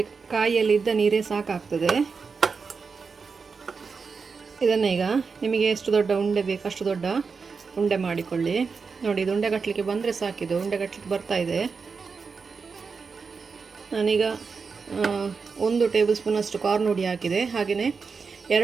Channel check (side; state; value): left; quieter; 5.1 dB